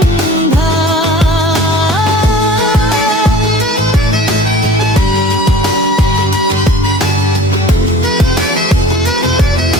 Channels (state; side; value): normal; both; correlation 0.44